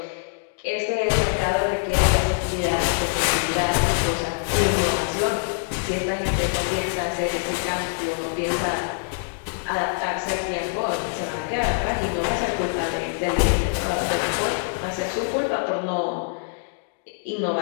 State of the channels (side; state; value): right; silent; digital silence